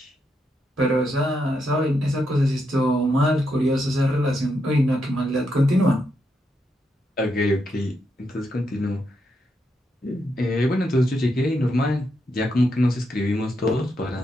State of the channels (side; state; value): both; normal; correlation 0.81